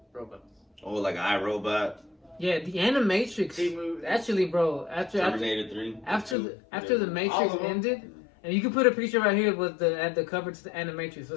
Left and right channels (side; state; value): right; drops out; at 6.4 s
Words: robots. Oh, like iRobot, Yeah, the Animatrix. Actually, bro, Terminator 3, after the All Matrix of them. ended, and you can put a picture right here with the cover to the Animatrix